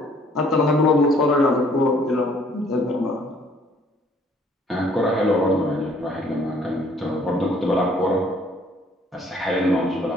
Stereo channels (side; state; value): both; normal; correlation 0.61